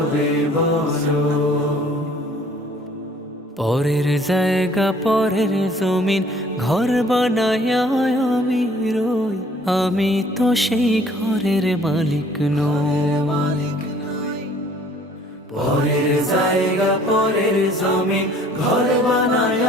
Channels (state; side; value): normal; both; correlation 0.56